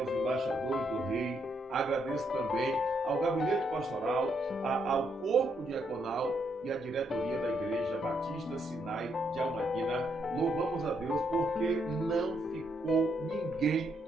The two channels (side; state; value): both; normal; correlation 0.76